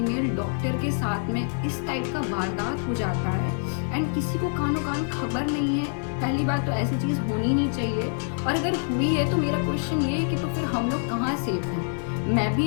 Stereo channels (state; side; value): silent; right; 60 dB below the other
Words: डॉक्टर के साथ में इस टाइप का वारदात हो जाता है एंड किसी को कानों कान खबर नहीं है। पहली बात तो ऐसी चीज़ होनी नहीं चाहिए, और अगर हुई है तो मेरा क्वेश्चन ये है कि तो फिर हम लोग कहाँ सेफ हैं? मैं